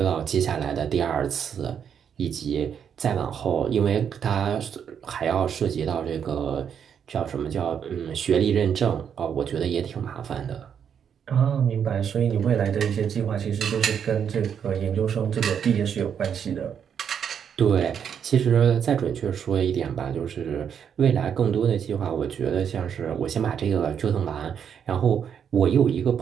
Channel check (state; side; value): quieter; left; 7.9 dB